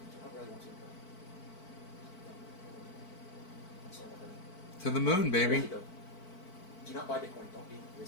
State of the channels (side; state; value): right; late; 4.5 ms